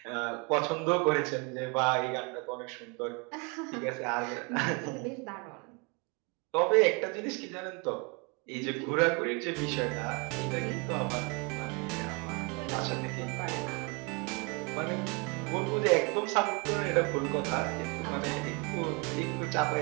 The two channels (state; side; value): quieter; left; 31.3 dB